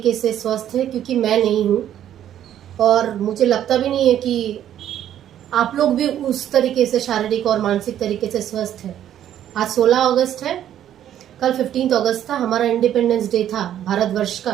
से स्वस्थ हैं, क्योंकि मैं नहीं हूं और मुझे लगता भी नहीं है कि आप लोग भी उस तरीके से शारीरिक और मानसिक तरीके से स्वस्थ हैं। आज 16 अगस्त है, कल 15 अगस्त था, हमारा इंडिपेंडेंस डे था भारतवर्ष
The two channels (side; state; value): left; quieter; 10.9 dB